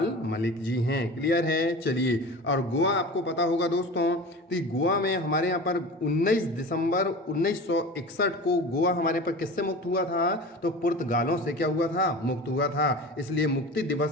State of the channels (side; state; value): both; normal; correlation 0.34